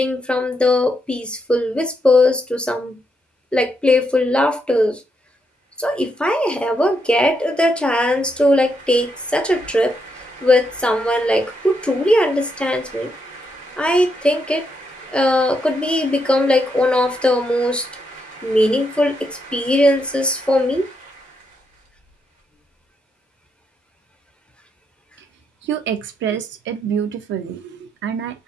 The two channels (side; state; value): both; normal; correlation 0.79